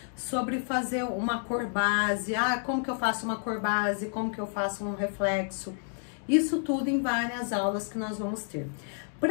sobre fazer uma cor base, como que eu faço uma cor base, como que eu faço um reflexo. Isso tudo em várias aulas que nós vamos ter.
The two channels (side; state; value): right; silent; 58 dB below the other